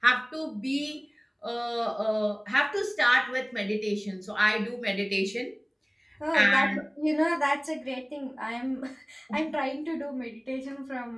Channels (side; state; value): both; identical; correlation 1.00